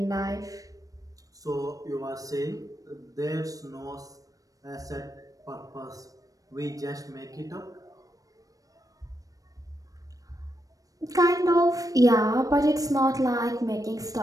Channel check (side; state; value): left; late; 0.17 ms